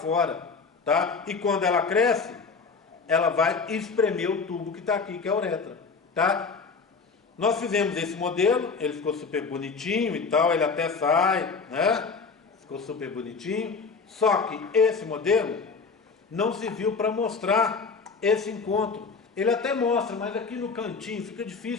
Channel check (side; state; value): right; quieter; 4.9 dB